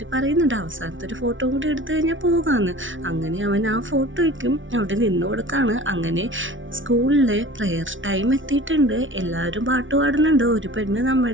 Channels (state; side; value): late; left; 0.56 ms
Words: പറയുന്നുണ്ട് അവസാനത്തെ ഒരു ഫോട്ടോ കൂടി എടുത്തു കഴിഞ്ഞാൽ പോകാമെന്ന്. അങ്ങനെ അവൻ ആ ഫോട്ടോയ്ക്കും അവിടെ നിന്ന് കൊടുക്കാണ്. അങ്ങനെ സ്കൂളിലെ പ്രെയർ ടൈം എത്തിയിട്ടുണ്ട്. എല്ലാവരും പാട്ട് പാടുന്നുണ്ട്. ഒരു പെണ്ണ്